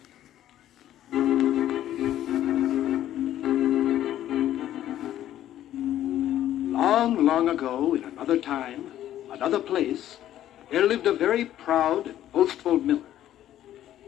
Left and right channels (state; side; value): quieter; right; 12.3 dB